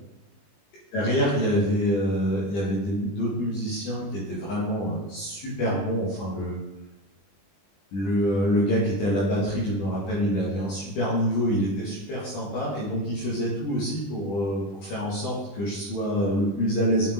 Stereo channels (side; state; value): right; late; 20 ms